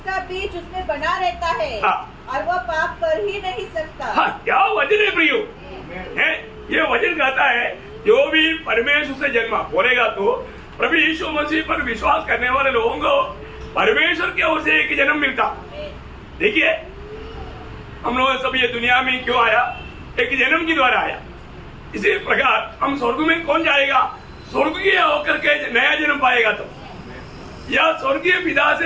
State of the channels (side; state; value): both; identical; correlation 1.00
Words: बीज उसमें बना रहता है। हाँ। और वो पाप कर ही नहीं सकता। हाँ, क्या वचन है प्रियो, है ये वचन कहता है जो भी परमेश्वर से जन्मा बोलेगा तो प्रभु यीशु मसीह पर विश्वास करने वाले लोगों को परमेश्वर की ओर से एक जन्म मिलता। देखिए, हम लोग सब ये दुनिया में क्यों आया? एक जन्म के द्वारा आया। इसी प्रकार हम स्वर्ग में कौन जाएगा? स्वर्गीय होकर के नया जन्म पाएगा तो, या स्वर्गीय पिता